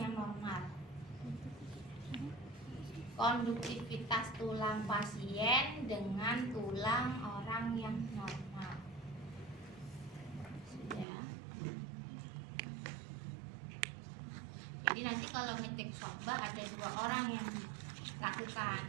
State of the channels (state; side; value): drops out; left; at 11.1 s